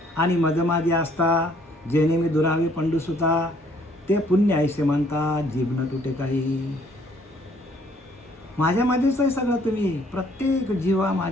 आणि मजमाजी असता जेणे मी दुरावे पंडुसुता ते पुण्य ऐसे म्हणता जीभ न तुटे काही. माझ्यामध्येच आहे सगळं. तुम्ही प्रत्येक जीवा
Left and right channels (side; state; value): both; normal; correlation 0.62